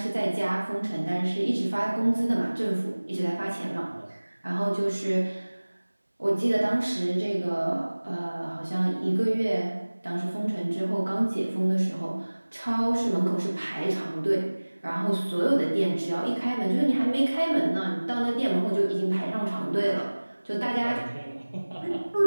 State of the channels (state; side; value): inverted; both; correlation -1.00